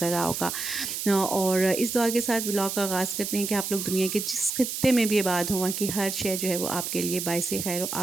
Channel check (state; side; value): noise; right; hiss, 4 dB below the sound